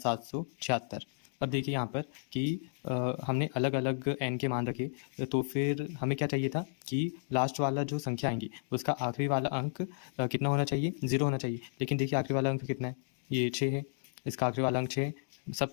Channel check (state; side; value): silent; right; digital silence